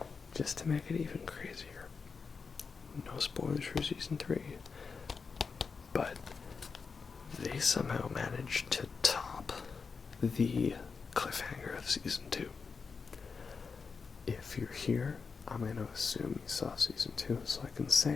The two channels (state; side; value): quieter; right; 5.2 dB